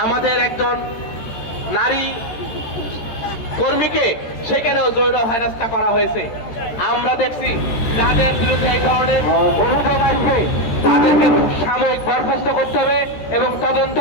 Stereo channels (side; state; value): right; late; 14 ms